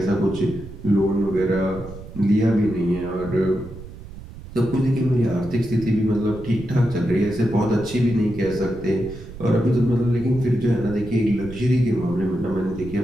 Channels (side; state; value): right; noise; rumble, 14 dB below the sound